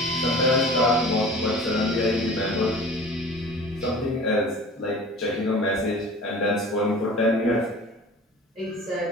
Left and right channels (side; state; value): both; normal; correlation 0.41